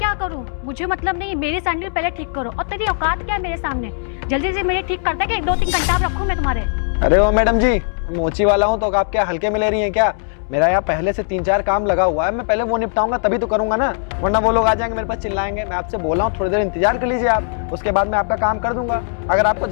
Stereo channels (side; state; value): right; silent; digital silence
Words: करूं? मुझे मतलब नहीं, मेरी सैंडल पहले ठीक करो। और तेरी औकात क्या है मेरे सामने? जल्दी से मेरे ठीक करता है कि 1-2-3 घंटा रखूं मैं तुम्हारे? अरे ओ मैडम जी, मोची वाला हूँ तो आप क्या हल्के में ले रही हैं क्या? मेरा यहाँ पहले से 3-4 काम लगा हुआ है, मैं पहले वो निपटाऊंगा तभी तो करूंगा ना, वरना वो लोग आ जाएंगे मेरे पास चिल्लाएंगे। मैं आपसे बोल रहा हूँ थोड़ी देर इंतजार कर लीजिए आप, उसके बाद मैं आपका काम कर दूंगा। अगर आपको